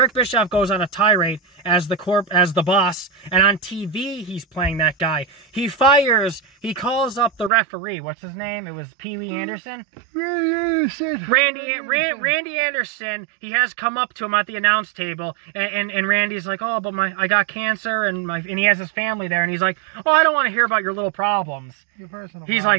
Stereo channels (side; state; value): left; drops out; at 7.5 s